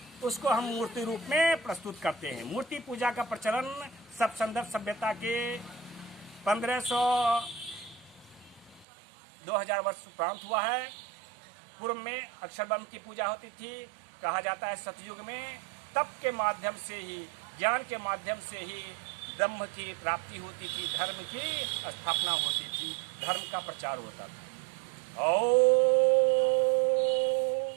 उसको हम मूर्ति रूप में प्रस्तुत करते हैं। मूर्ति पूजा का प्रचलन सब संदर्भ सभ्यता के 1500-2000 वर्ष उपरांत हुआ है। पूर्व में अक्षर ब्रह्म की पूजा होती थी। कहा जाता है सतयुग में तप के माध्यम से ही, ज्ञान के माध्यम से ही ब्रह्म की प्राप्ति होती थी, धर्म की स्थापना होती थी, धर्म का प्रचार होता था। ओम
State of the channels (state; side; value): drops out; left; at 8.8 s